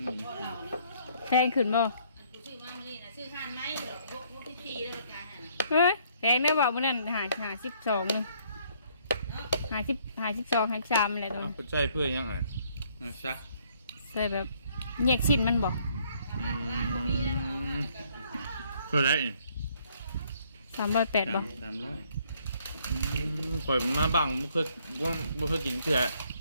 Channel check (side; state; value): both; inverted; correlation -0.65